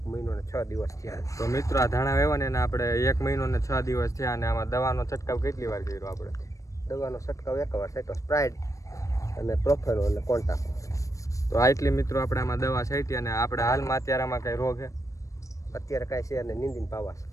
મહિનો ને 6 દિવસ થયા. તો મિત્રો આ ધાણા વેવાને આપણે 1 મહિનો ને 6 દિવસ થયા અને આમાં દવાનો છંટકાવ કેટલી વાર કર્યો આપણે? દવાનો છંટકાવ 1 વાર છાંટ્યો, સ્પ્રાઇડ અને પ્રોફેનો અને કોન્ટાક. તો આટલી મિત્રો આપણે આમાં દવા છાંટી અને આપણે હાલમાં અત્યારે આમાં કઈ રોગ છે? અત્યારે કાંઈ છે અને નીંદીને પાવા છે.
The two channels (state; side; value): late; right; 0.16 ms